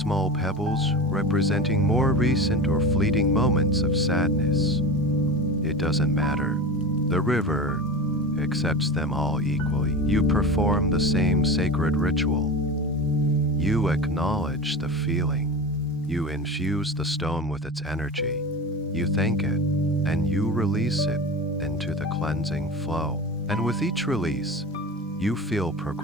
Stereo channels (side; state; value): both; normal; correlation 0.29